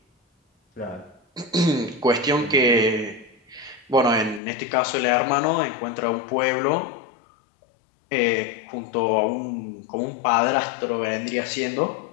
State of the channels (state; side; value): drops out; right; at 4.4 s